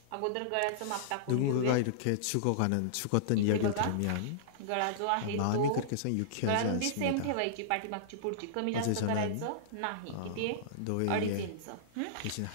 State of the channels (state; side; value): different; both; correlation -0.02